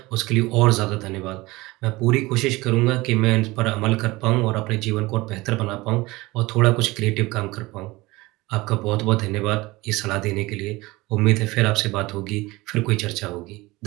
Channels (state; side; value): quieter; left; 21.1 dB